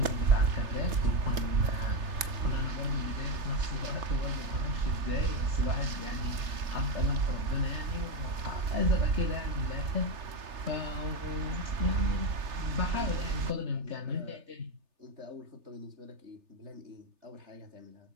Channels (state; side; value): late; left; 3.3 ms